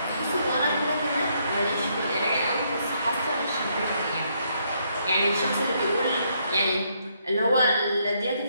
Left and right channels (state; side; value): inverted; both; correlation -0.73